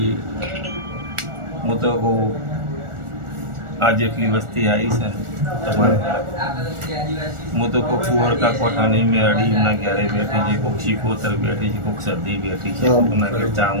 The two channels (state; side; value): late; left; 1.4 ms